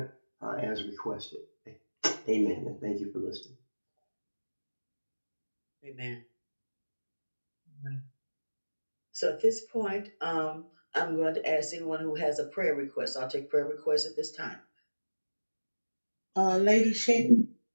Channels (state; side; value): inverted; both; correlation -1.00